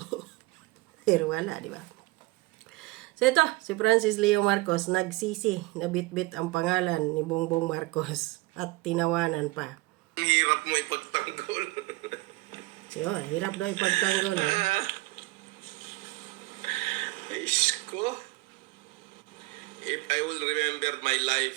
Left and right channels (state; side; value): quieter; left; 21.4 dB